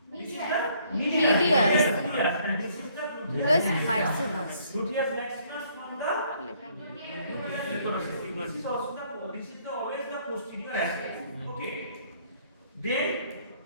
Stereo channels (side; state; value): both; inverted; correlation -0.64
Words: This is the medius and this is the Gluteus maximus. Gluteus maximus from the this is always the posterior aspect. Okay. Then